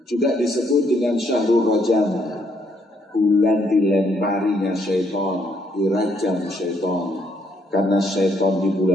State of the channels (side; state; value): both; normal; correlation 0.71